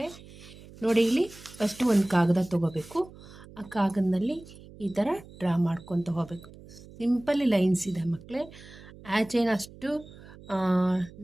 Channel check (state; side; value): noise; right; hum, 19 dB below the sound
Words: ನೋಡಿ, ಇಲ್ಲಿ ಫಸ್ಟು ಒಂದು ಕಾಗದ ತೊಗೋಬೇಕು. ಆ ಕಾಗದದಲ್ಲಿ ಈ ಥರ ಡ್ರಾ ಮಾಡ್ಕೊತ ಹೋಗಬೇಕು. ಸಿಂಪಲ್ ಲೈನ್ಸ್ ಇದೆ ಮಕ್ಕಳೇ. ಹ್ಯಾಚ್ ಏನು ಅಷ್ಟು